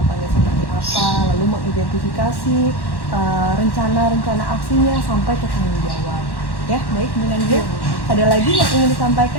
seperti apa, lalu mengidentifikasi rencana-rencana aksinya sampai ke tanggung jawab. Ya, baik Bu Nandia. Ada lagi yang ingin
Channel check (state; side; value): late; right; 1.1 ms